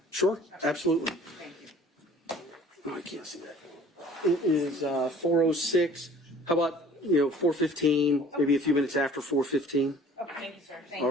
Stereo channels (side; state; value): both; normal; correlation 0.51